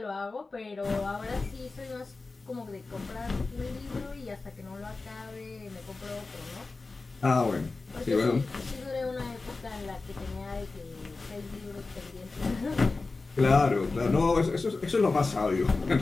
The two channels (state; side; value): quieter; right; 3.7 dB